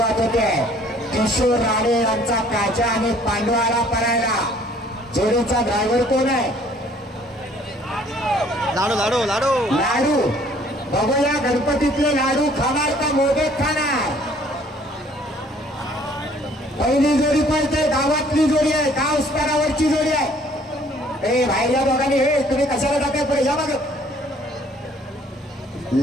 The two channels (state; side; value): normal; both; correlation 0.58